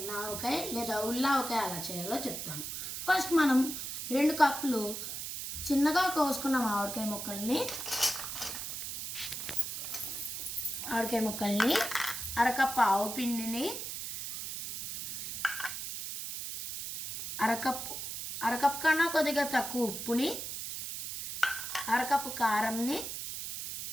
ఆవకాయ లేదా ఉల్లావకాయ ఎలా చేయాలో చెప్తాను. ఫస్ట్ మనం 2 కప్పులు చిన్నగా కోసుకున్న మామిడికాయ ముక్కల్ని అరకప్పు ఆవు పిండిని అరకప్పు కన్నా కొద్దిగా తక్కువ ఉప్పుని అరకప్పు కారంని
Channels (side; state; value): right; noise; hiss, 6 dB below the sound